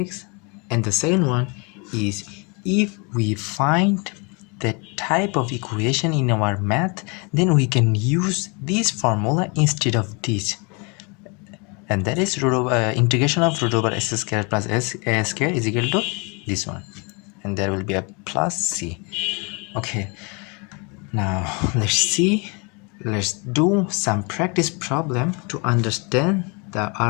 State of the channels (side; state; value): right; quieter; 31.8 dB